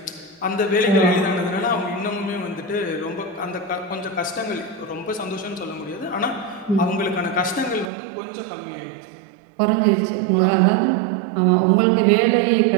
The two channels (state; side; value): drops out; left; at 7.9 s